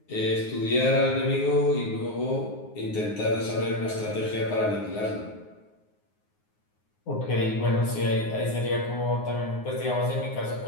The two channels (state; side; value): late; right; 9.5 ms